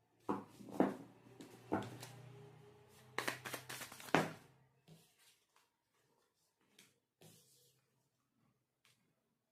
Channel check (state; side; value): identical; both; correlation 1.00